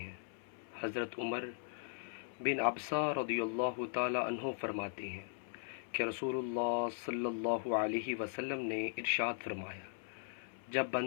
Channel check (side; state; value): right; silent; 52 dB below the other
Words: حضرت عمر بن عبسہ رضی اللہ تعالی عنہ فرماتے ہیں کہ رسول اللہ صلی اللہ علیہ وسلم نے ارشاد فرمایا، جب